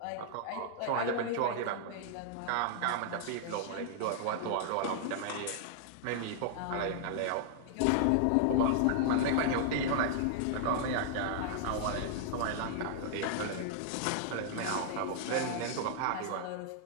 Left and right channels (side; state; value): both; different; correlation -0.01